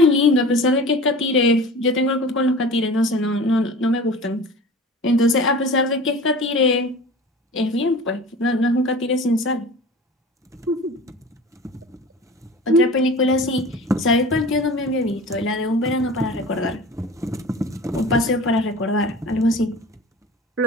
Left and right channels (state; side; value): normal; both; correlation 0.38